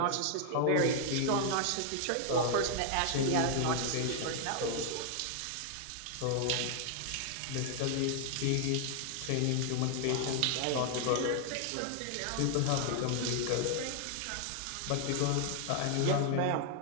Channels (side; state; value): both; different; correlation 0.00